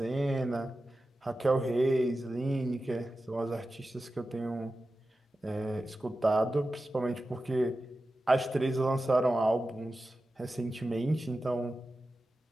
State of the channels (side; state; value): both; normal; correlation 0.93